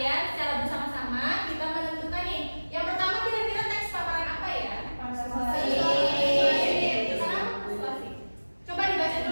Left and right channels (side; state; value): both; inverted; correlation -1.00